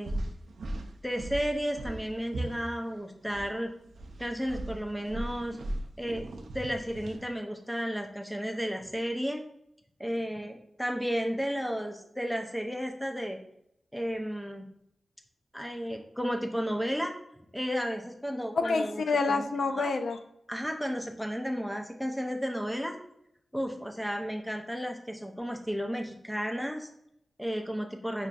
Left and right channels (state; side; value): normal; both; correlation 0.95